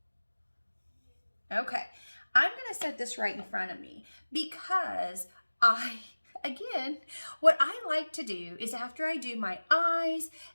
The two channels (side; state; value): both; inverted; correlation -1.00